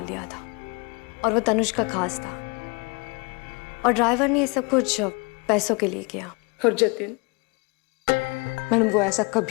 दिया था और वो तनुज का खास था, और ड्राइवर ने ये सब कुछ पैसों के लिए किया। और जतिन मैडम, वो ऐसा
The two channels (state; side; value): quieter; right; 30.1 dB